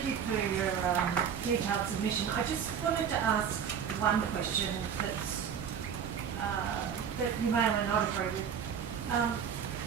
you for your detailed submission. I just wanted to ask one question that's, that you may or may not agree with.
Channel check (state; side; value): quieter; left; 7.7 dB